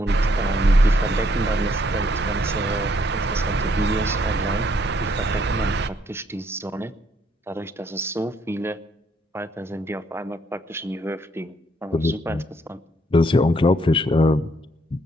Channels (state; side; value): normal; both; correlation 0.70